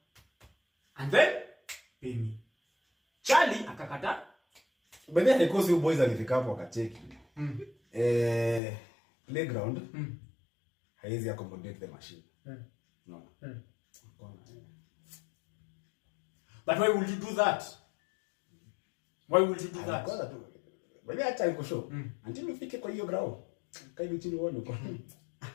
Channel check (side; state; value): right; drops out; at 8.6 s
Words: and then pay me. Charlie akakataa. But then because you boys alifika hapo akacheki. Playground haiwezi accommodate the machine. No. But why would you do that? But acha niko show. Until ufike kwa hiyo ground. Kaidi chini uone uko.